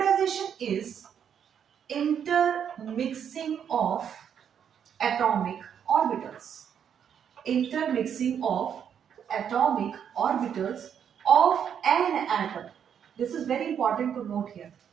is intermixing of atomic orbitals. Intermixing of atomic orbitals of an atom. This is very important to note here.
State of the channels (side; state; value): left; quieter; 8.3 dB